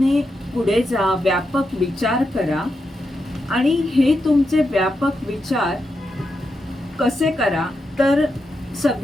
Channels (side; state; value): both; normal; correlation 0.86